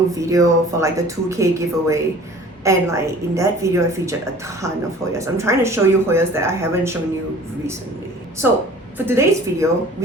video for the 2K giveaway. And in that video, I featured a ton of Hoyas. I'm trying to show you Hoyas that I haven't shown you recently. So for today's video,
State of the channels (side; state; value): both; normal; correlation 0.47